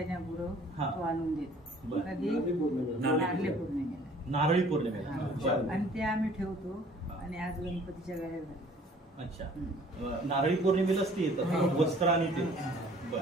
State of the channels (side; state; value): both; normal; correlation 0.54